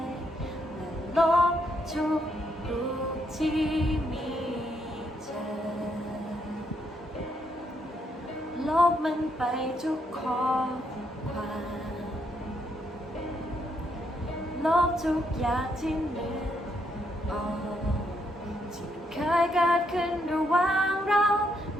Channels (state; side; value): normal; both; correlation 0.76